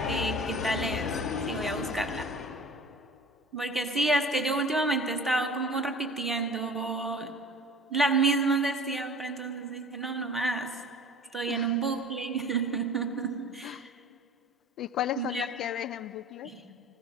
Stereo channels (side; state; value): both; normal; correlation 0.42